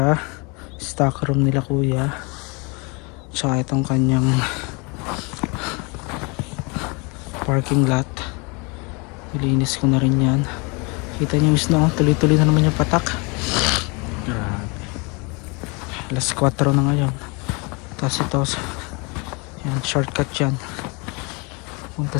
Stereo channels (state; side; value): quieter; right; 30.3 dB